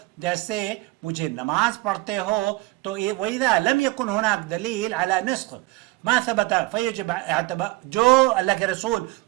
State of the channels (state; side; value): quieter; left; 21.6 dB